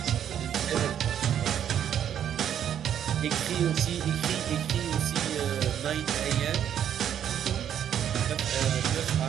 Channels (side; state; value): left; quieter; 9.6 dB